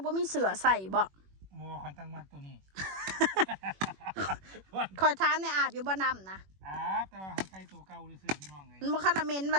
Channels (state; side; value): late; left; 21 ms